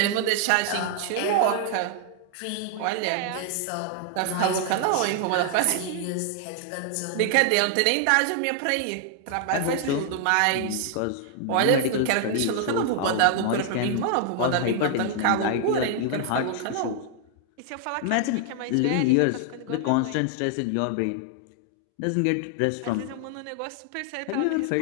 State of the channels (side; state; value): both; different; correlation 0.00